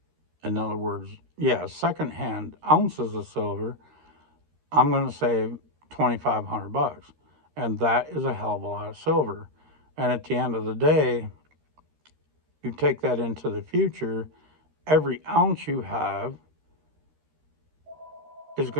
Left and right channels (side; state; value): left; late; 13 ms